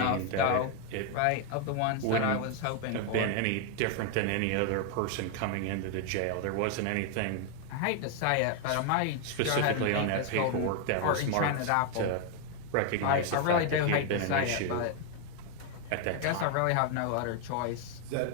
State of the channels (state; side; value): different; both; correlation 0.00